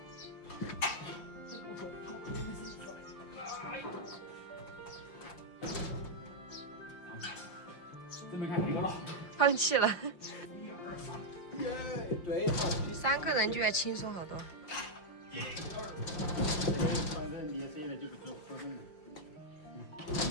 这边看哪个了？放弃了。1、2、3，耶，对，好。 3个人就要轻松好多。1、2、3，反正你现在就不做活动了。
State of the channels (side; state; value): right; late; 5.7 ms